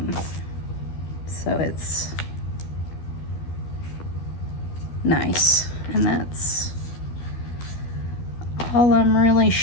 So it's nice. And that's all I'm really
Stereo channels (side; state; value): right; late; 12 ms